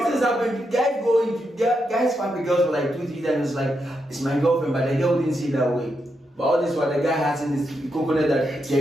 things happen. Guys fuck the girls for like 2-3 times. It's like it's my girlfriend, but the girl didn't see it that way. But all this while the guy has in his coconut that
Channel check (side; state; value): both; normal; correlation 0.83